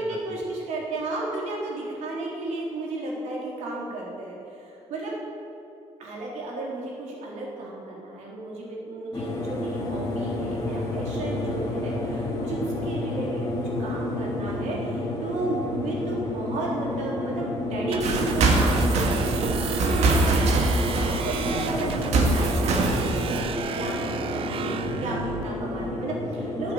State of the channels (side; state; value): both; normal; correlation 0.57